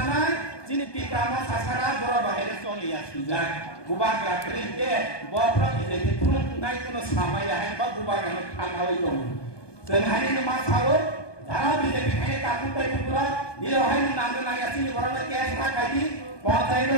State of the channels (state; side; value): late; right; 1.2 ms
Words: Sini kita mau sasaran berapa hari soalnya ya sudah bukan kering ke bapak bisa diturun naik ke sama ya hebat bukan yang tanggal itu sehari ini masalah cara bisa dipakai takut dari pulau di luar ini nanti nanya sini berapa cash lagi bahasa itu